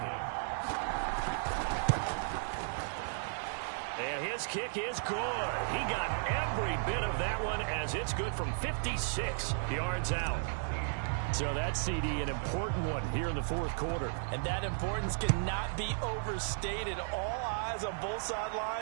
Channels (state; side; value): silent; left; digital silence